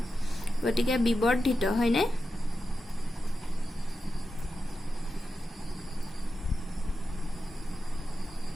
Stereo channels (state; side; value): normal; both; correlation 0.90